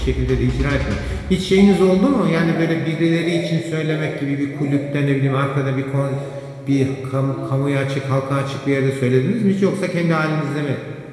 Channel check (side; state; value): both; identical; correlation 1.00